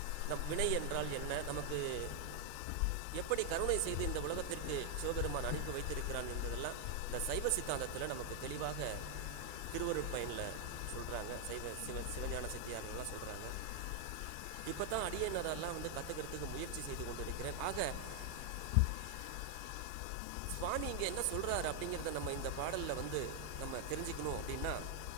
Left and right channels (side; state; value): both; different; correlation 0.00